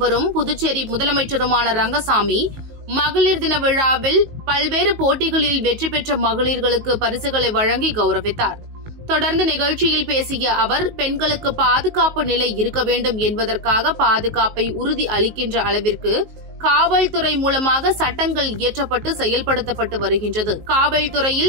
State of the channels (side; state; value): left; late; 19 ms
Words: புதுச்சேரி முதலமைச்சருமான ரங்கசாமி மகளிர் தின விழாவில் பல்வேறு போட்டிகளில் வெற்றி பெற்ற மகளிர்களுக்கு பரிசுகளை வழங்கி கௌரவித்தார். தொடர்ந்து நிகழ்ச்சியில் பேசிய அவர், பெண்களுக்கு பாதுகாப்பு நிலை இருக்க வேண்டும் என்பதற்காக பாதுகாப்பை உறுதி அளிக்கின்ற அளவிற்கு காவல்துறை மூலமாக சட்டங்கள் இயற்றப்பட்டு செயல்படுத்தப்பட்டு வருகின்றது.